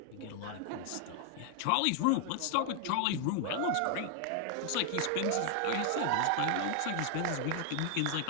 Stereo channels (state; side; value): different; both; correlation 0.00